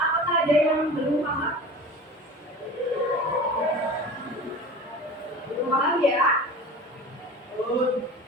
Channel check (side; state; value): both; normal; correlation 0.37